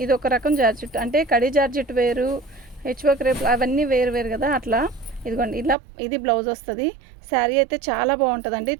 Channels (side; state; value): left; drops out; at 5.8 s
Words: ఇది ఒక రకం జార్జెట్, అంటే కడి జార్జెట్ వేరు, హెచ్వర్క్ రేపు అవన్నీ వేరు వేరు కదా, అట్లా. ఇదిగోండి, ఇలా ఇది బ్లౌజ్ వస్తుంది. శారీ అయితే చాలా బాగుంటుందండి.